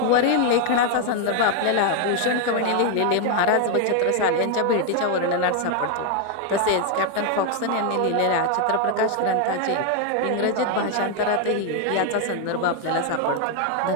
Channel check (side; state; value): both; different; correlation 0.01